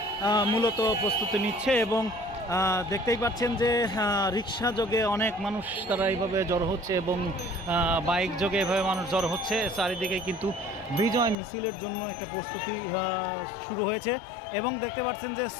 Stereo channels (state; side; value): drops out; right; at 11.4 s